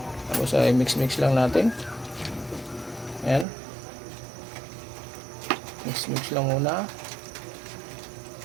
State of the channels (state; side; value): drops out; left; at 3.5 s